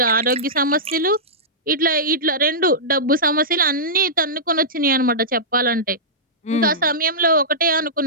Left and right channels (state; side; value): normal; both; correlation -0.16